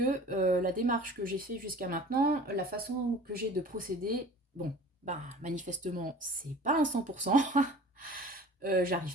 la démarche que j'ai faite jusqu'à maintenant, la façon que j'ai de procéder, manifestement, c'est pas un 100%.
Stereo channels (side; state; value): both; normal; correlation 0.43